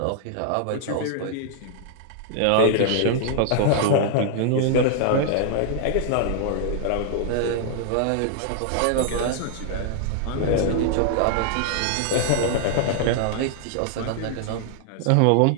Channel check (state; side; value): different; both; correlation 0.00